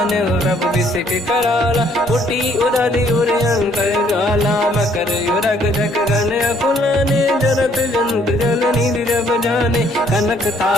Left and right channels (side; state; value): both; normal; correlation 0.65